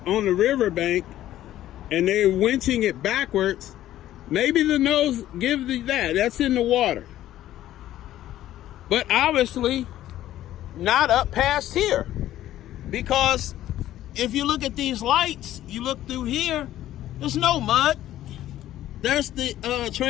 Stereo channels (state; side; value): quieter; right; 13.3 dB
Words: riverbank and they're winching it backwards, maybe the nose gives you that. That's in the water. But obviously, not up past here. Because if you look at these lights, you look through here, there's no mud. There's the